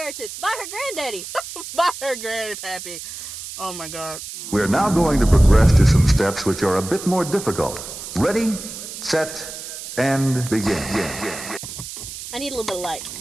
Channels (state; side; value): noise; right; hiss, 10 dB below the sound